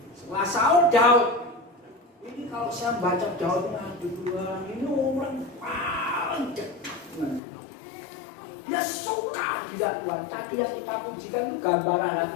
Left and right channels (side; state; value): right; drops out; at 7.4 s